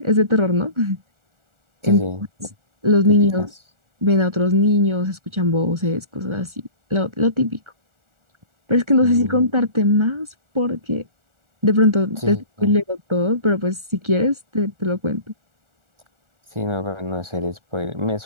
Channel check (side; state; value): left; late; 1.4 ms